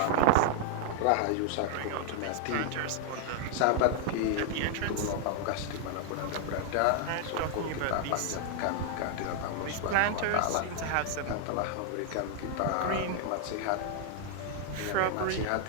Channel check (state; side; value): different; both; correlation 0.00